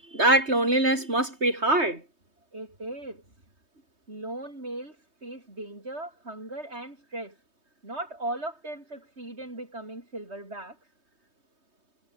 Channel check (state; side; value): late; left; 3.2 ms